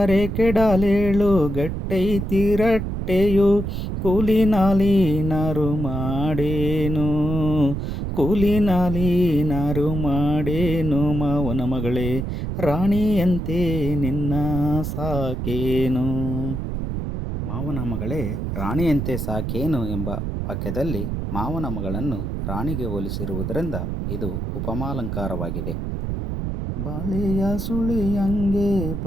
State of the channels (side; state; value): right; noise; rumble, 3 dB below the sound